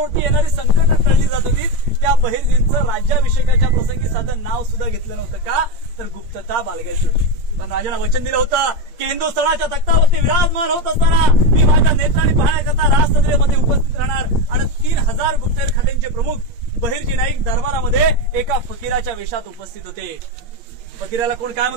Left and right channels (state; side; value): late; left; 8.7 ms